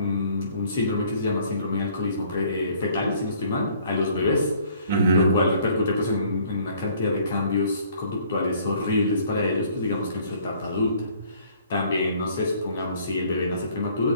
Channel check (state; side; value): inverted; both; correlation -0.59